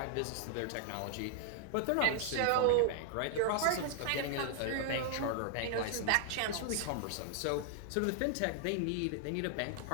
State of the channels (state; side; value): different; both; correlation -0.01